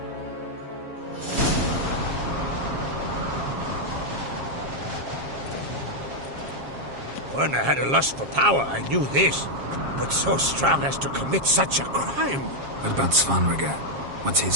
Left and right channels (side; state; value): left; late; 7.4 ms